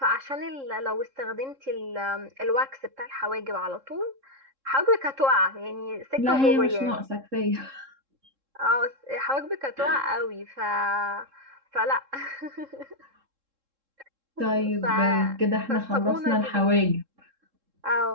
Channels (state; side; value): late; left; 3.7 ms